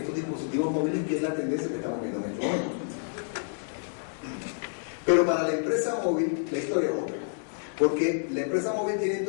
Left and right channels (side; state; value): right; silent; digital silence